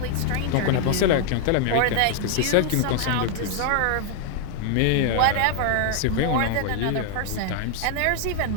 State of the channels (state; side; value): different; both; correlation 0.00